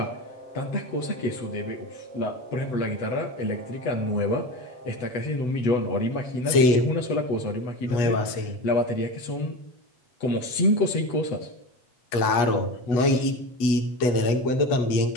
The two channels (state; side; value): late; right; 8.3 ms